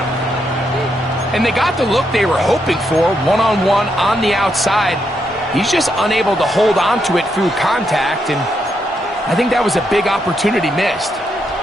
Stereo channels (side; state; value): both; normal; correlation 0.80